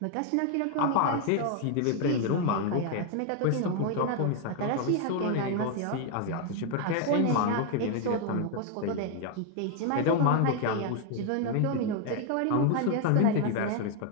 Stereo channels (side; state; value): both; different; correlation 0.00